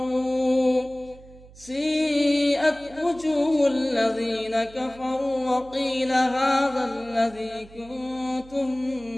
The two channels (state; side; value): noise; right; hum, 22 dB below the sound